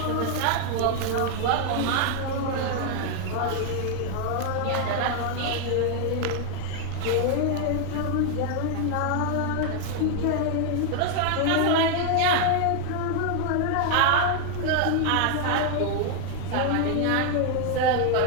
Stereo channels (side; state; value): both; different; correlation 0.00